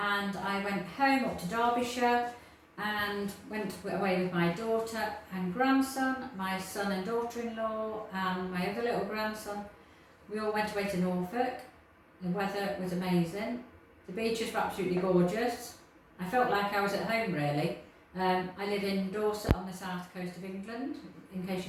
I went home up to Derbyshire and went away with my daughter and grandson, my son and daughter-in-law and my other little grandson. We all went away to Norfolk. The weather was amazing. The beaches were absolutely gorgeous. I felt like I was at home really. I live in Dorset on the south coast of England, in case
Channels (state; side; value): identical; both; correlation 1.00